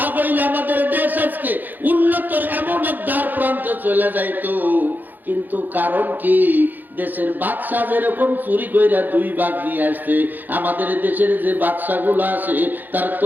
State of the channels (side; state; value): left; late; 0.087 ms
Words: আমাদের দেশ আজকে উন্নতর এমন এক দ্বার প্রান্তে চলে যাইতো। কিন্তু কারণ কি, দেশের বাদশা যেরকম চুরি কইরা 2 ভাগ নিয়ে আসছে, আমাদের দেশের যে বাদশাগুলো আছে তার